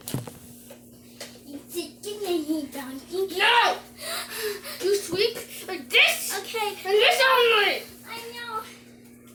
You sit in here, donkey. No! You sleep like this! Okay. And this only! I know.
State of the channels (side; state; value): both; identical; correlation 1.00